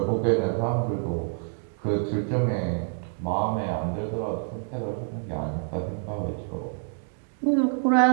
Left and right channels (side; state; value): left; silent; 56 dB below the other